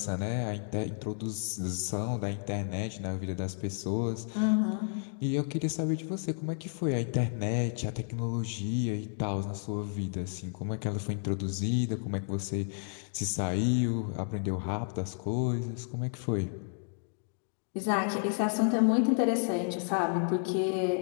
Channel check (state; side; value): silent; right; 57 dB below the other